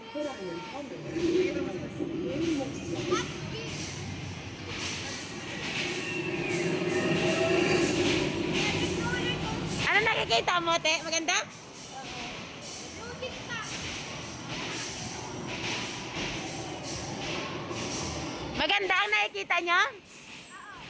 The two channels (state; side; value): identical; both; correlation 1.00